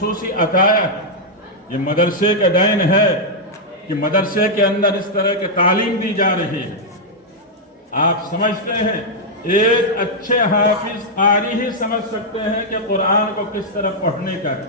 अताया है। ये मदरसे का दैन है कि मदरसे के अंदर इस तरह की तालीम दी जा रही है। आप समझते हैं एक अच्छे हाफिज कारी ही समझ सकते हैं कि कुरान को किस तरह पढ़ने का है,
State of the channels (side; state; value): both; normal; correlation -0.04